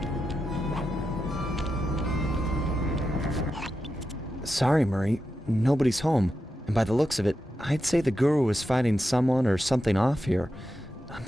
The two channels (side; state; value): both; normal; correlation 0.89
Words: Sorry, Murray. Nobody's home. And by the looks of it, I'd say the guru is fighting someone or something off here. I'm